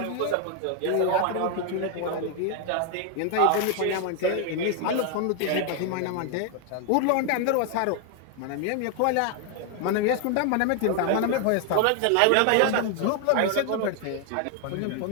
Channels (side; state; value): both; different; correlation 0.01